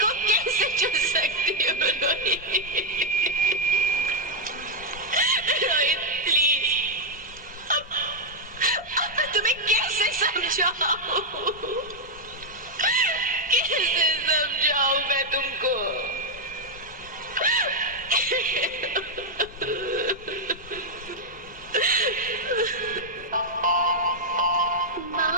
को कैसे चुन सकती हूँ? रोहित प्लीज, अब मैं तुम्हें कैसे समझाऊं? कैसे समझाऊं मैं तुमको?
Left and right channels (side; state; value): both; normal; correlation -0.03